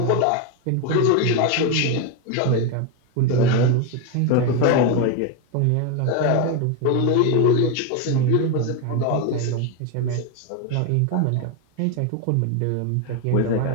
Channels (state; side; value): different; both; correlation 0.02